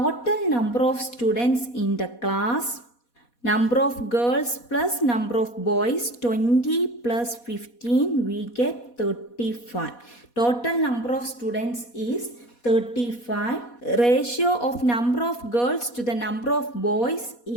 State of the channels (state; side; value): late; right; 4.2 ms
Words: number of students in the class, number of girls plus number of boys, 20 plus 15, we get 35. Total number of students is 35. Ratio of number of girls to the number of boys